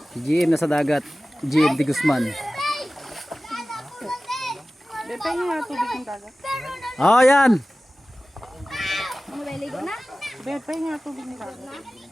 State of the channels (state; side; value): normal; both; correlation 0.96